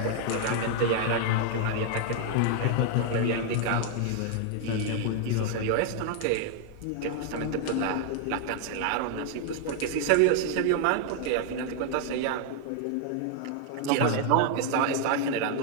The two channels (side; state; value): both; different; correlation 0.00